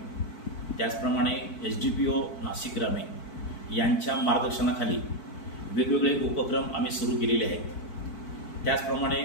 त्याचप्रमाणे SDPO नाशिक ग्रामीण यांच्या मार्गदर्शनाखाली वेगवेगळे उपक्रम आम्ही सुरू केलेले आहेत। त्याचप्रमाणे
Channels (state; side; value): late; right; 4.5 ms